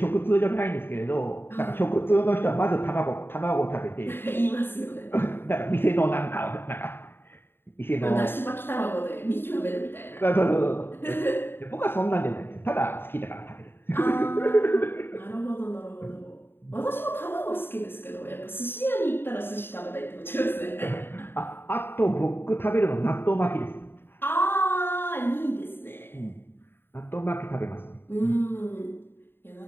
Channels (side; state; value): right; late; 0.10 ms